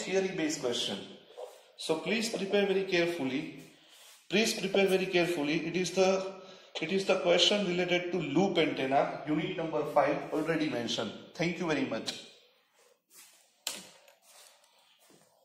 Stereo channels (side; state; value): both; identical; correlation 1.00